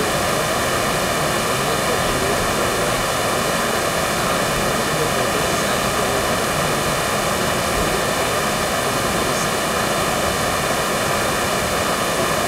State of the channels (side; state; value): both; identical; correlation 1.00